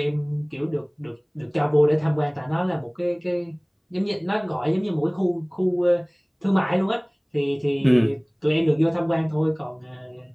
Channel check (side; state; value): both; identical; correlation 1.00